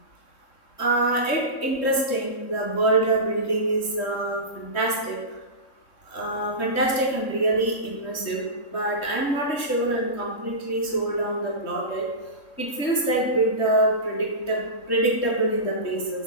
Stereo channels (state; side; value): late; right; 3.6 ms